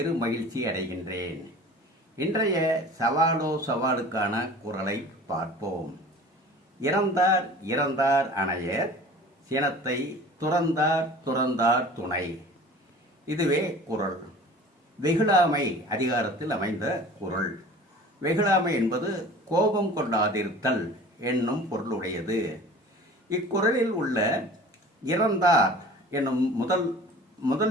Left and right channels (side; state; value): both; normal; correlation 0.43